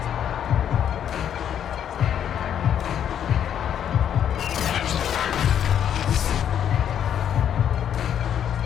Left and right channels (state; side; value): quieter; right; 9.4 dB